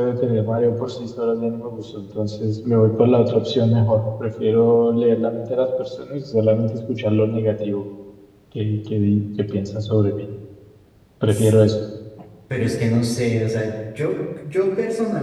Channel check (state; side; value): identical; both; correlation 1.00